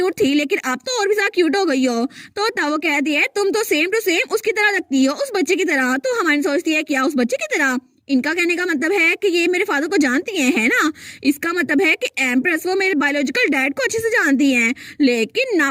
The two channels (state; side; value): identical; both; correlation 1.00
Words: थी, लेकिन अब तो और भी ज्यादा क्यूट हो गई हो। तो तब वो कहती है तुम तो सेम टू सेम उसकी तरह लगती हो, उस बच्चे की तरह। तो हमारी सोचती है क्या उस बच्चे की तरह, इनका कहने का मतलब है कि ये मेरे फादर को जानती है ना। इसका मतलब है कि एम्प्रेस वो मेरे बायोलॉजिकल डैड को अच्छे से जानती हैं, लेकिन